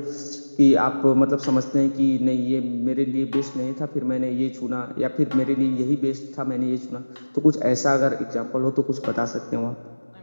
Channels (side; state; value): both; inverted; correlation -1.00